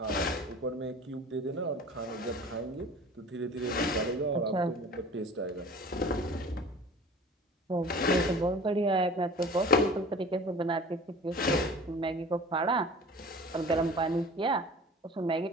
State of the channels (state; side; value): normal; both; correlation 0.43